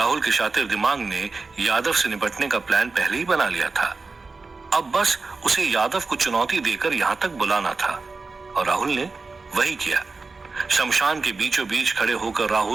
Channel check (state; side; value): quieter; left; 4.0 dB